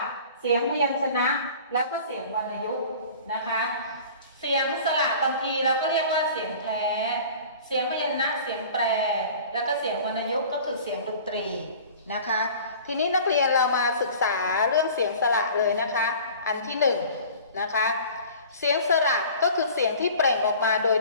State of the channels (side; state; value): both; inverted; correlation -0.44